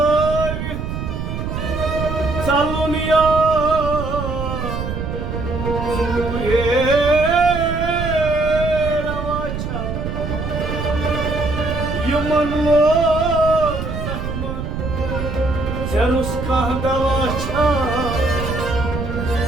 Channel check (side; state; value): right; noise; rumble, 5 dB below the sound